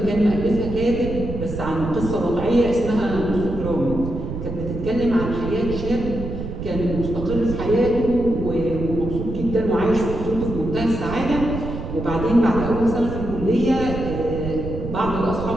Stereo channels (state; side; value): noise; right; rumble, 6 dB below the sound